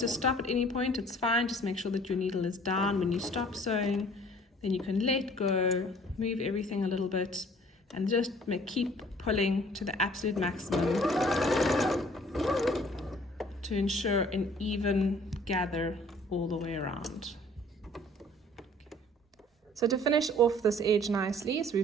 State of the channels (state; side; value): normal; both; correlation 0.54